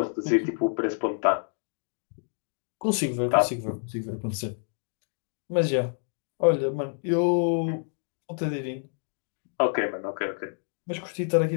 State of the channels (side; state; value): right; silent; 59 dB below the other